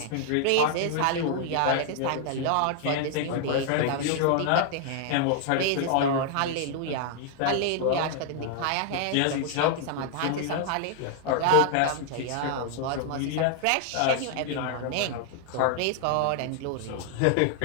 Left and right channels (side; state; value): both; different; correlation 0.00